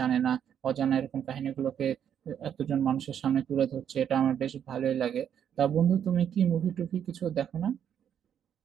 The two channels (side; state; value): left; quieter; 9.0 dB